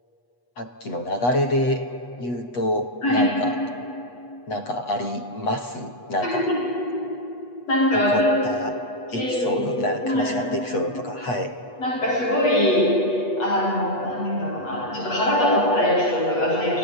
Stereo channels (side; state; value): right; late; 8.2 ms